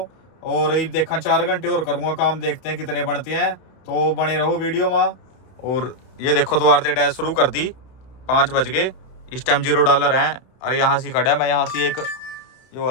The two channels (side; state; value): right; late; 31 ms